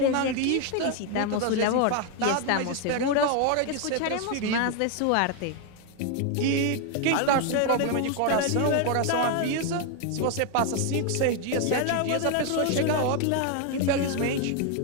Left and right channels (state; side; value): different; both; correlation 0.01